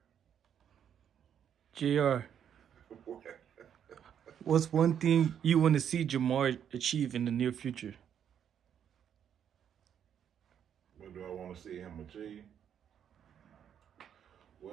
JR, what's one thing you want to see Jamar achieve in the near future? What do I want to see him achieve?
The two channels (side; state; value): left; quieter; 8.8 dB